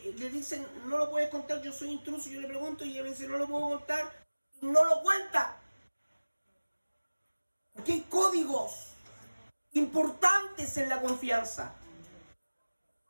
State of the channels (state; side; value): inverted; both; correlation -1.00